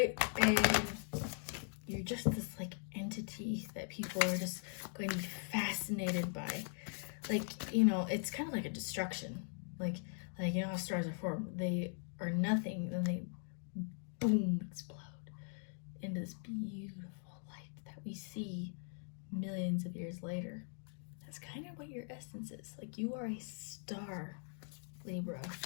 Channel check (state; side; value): silent; right; 51 dB below the other